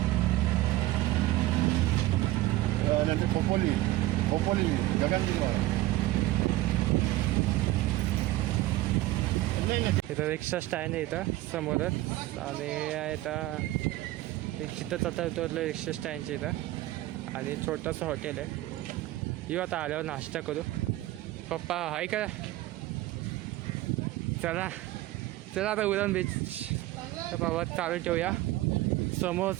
खोपोली गगनगिरी इथं रिक्षा स्टँड आहे इथं समोरच. आणि इथं रिक्षाच आता उतरलं रिक्षा स्टँडच्या इथं. आणि छोटंसं हॉटेल आहे. येऊ आता आल्यावर नाश्ता करू. पप्पा आहे का. चला चला आता उरण बीच तर बाबा चालू ठेवूया.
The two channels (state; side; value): quieter; left; 17.2 dB